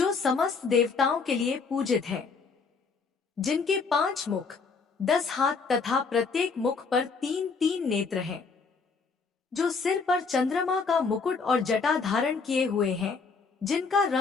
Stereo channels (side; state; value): right; quieter; 4.8 dB